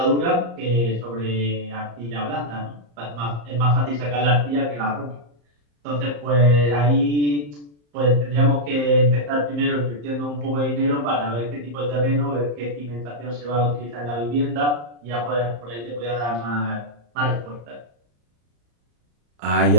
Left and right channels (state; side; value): late; left; 34 ms